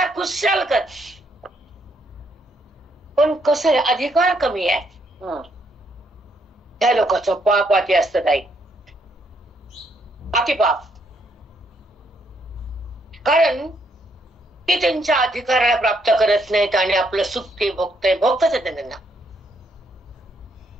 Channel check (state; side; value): normal; both; correlation 0.73